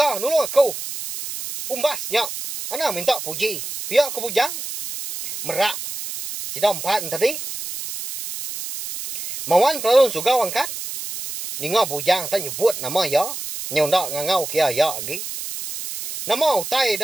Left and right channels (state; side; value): noise; right; hiss, 7 dB below the sound